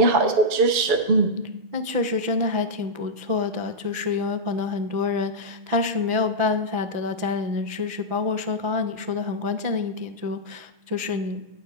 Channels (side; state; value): left; late; 6.0 ms